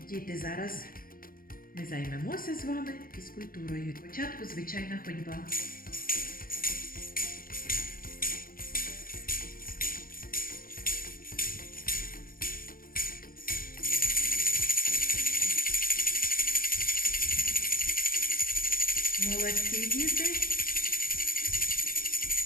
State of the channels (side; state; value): right; late; 0.42 ms